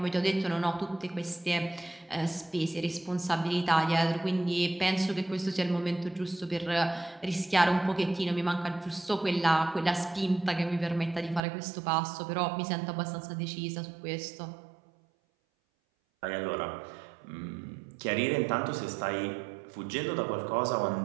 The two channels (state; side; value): drops out; left; at 11.4 s